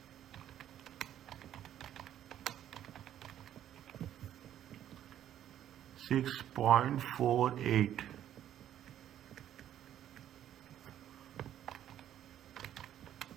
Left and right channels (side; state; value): left; quieter; 11.2 dB